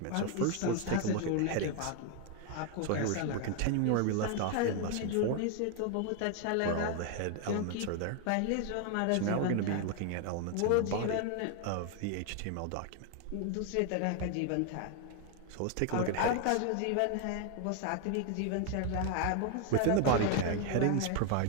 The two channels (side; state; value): both; different; correlation 0.01